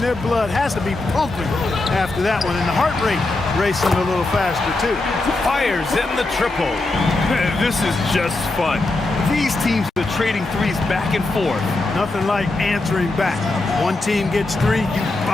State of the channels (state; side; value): quieter; right; 3.1 dB